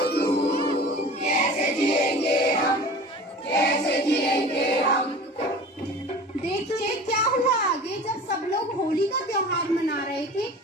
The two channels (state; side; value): normal; both; correlation 0.39